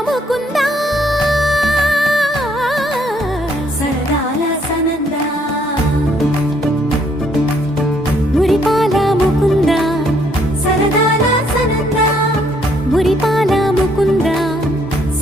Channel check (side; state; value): both; normal; correlation 0.68